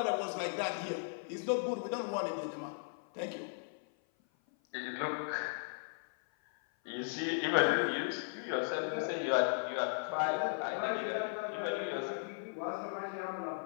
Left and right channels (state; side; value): silent; right; 53 dB below the other